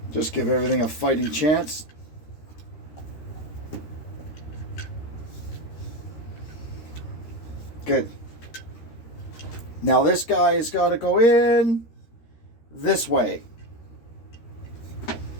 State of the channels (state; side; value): late; right; 13 ms